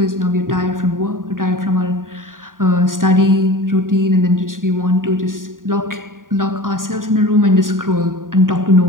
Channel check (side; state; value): left; late; 0.90 ms